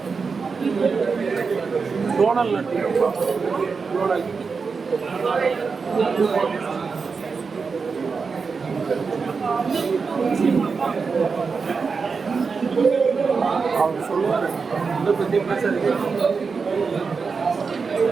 డోనల్ నట్టి డోనల్ அவர் சொல்லுவார் இதை பற்றி பேசாதீங்க.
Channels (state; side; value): quieter; left; 5.0 dB